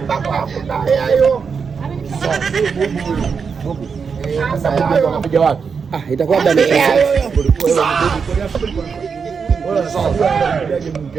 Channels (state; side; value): quieter; left; 5.8 dB